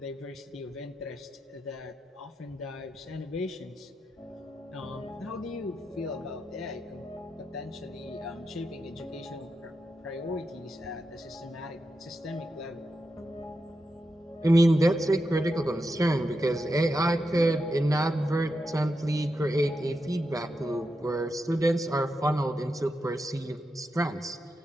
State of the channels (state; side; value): normal; both; correlation 0.87